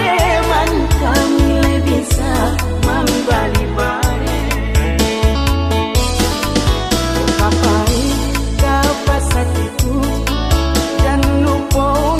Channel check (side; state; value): both; identical; correlation 1.00